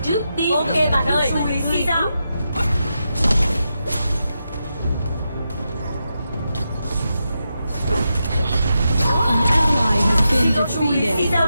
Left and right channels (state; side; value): inverted; both; correlation -0.87